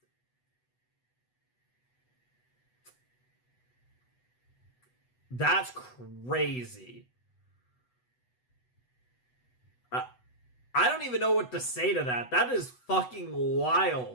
that's crazy. I don't even know what to say to that. That is fucking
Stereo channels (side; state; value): right; late; 8.1 ms